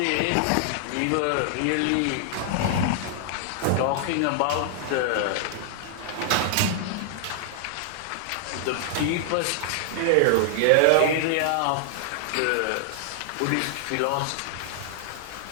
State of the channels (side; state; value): both; different; correlation 0.00